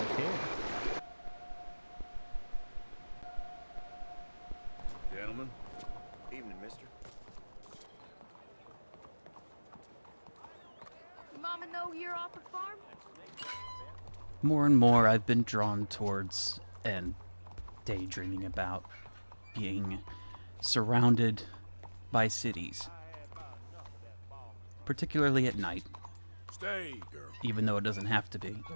care. Gentlemen. Evening, mister. Mama know you're off the farm? More and more I've been drawn towards and daydreaming about being surrounded by cities. Particularly at night, Stay, girl. even though it doesn't have to be.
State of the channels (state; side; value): inverted; both; correlation -1.00